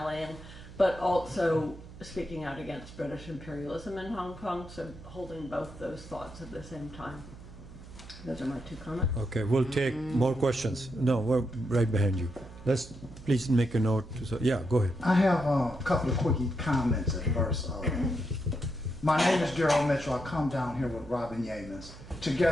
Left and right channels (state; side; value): noise; right; hum, 16 dB below the sound